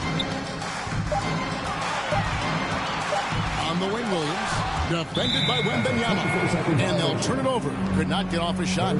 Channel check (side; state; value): both; identical; correlation 1.00